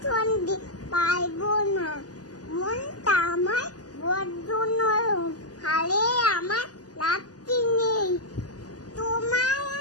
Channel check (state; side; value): late; right; 0.68 ms